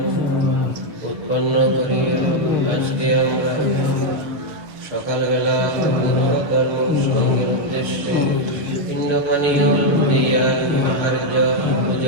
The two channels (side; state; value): left; late; 6.4 ms